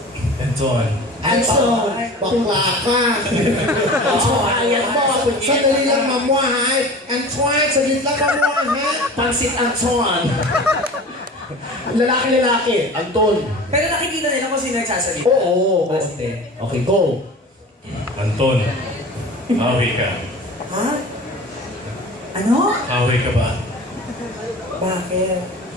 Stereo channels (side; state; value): both; normal; correlation 0.37